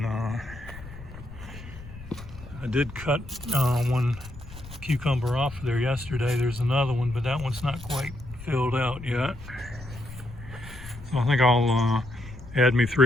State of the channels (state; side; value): noise; left; rumble, 15 dB below the sound